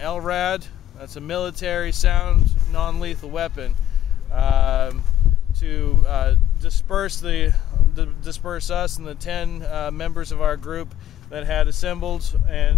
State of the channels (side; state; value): right; quieter; 11.8 dB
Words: That's a military sound non-lethal weapon to disperse us and the 10 members of our group that had assembled